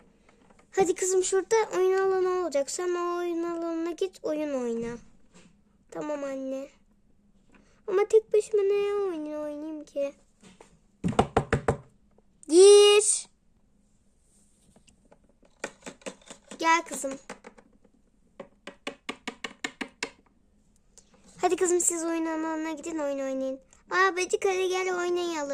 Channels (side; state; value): both; identical; correlation 1.00